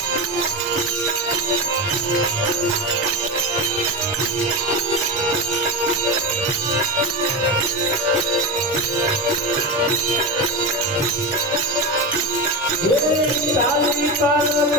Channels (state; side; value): normal; both; correlation 0.18